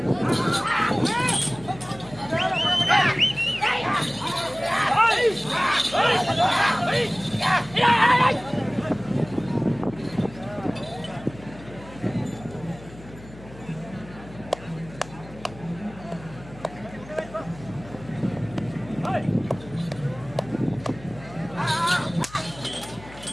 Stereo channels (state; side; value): noise; left; hum, 18 dB below the sound